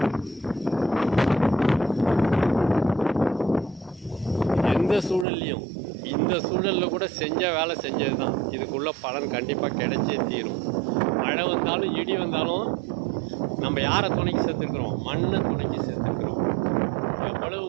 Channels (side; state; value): left; drops out; at 5.2 s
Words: இந்த சூழலில் கூட செஞ்ச வேலை செஞ்சது தான். இதுக்குள்ள பலன் கண்டிப்பாக கிடைச்சே தீரும். மழை வந்தாலும் இடி வந்தாலும் நம்ம யாரை துணைக்கு சேர்த்துருக்குறோம்? மண்ணை துணைக்கு சேர்த்துருக்குறோம். எவ்வளவு